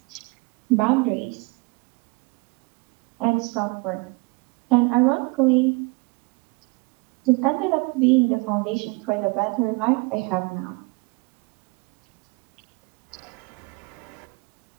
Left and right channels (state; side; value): quieter; left; 28.6 dB